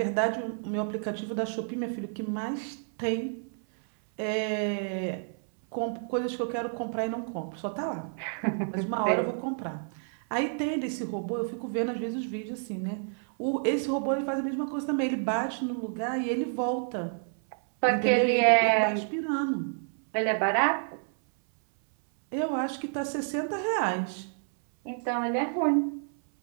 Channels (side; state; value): left; silent; 58 dB below the other